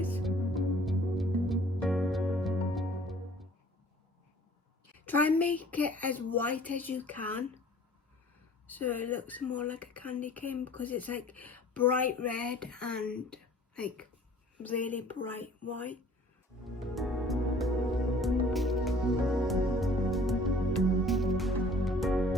is. Try and make it as white as you can, so it looks more like a candy cane, because it's like bright red and like really bright white.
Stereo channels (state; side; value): normal; both; correlation 0.52